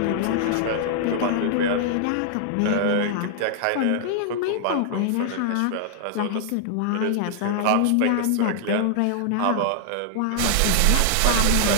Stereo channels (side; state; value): both; different; correlation -0.01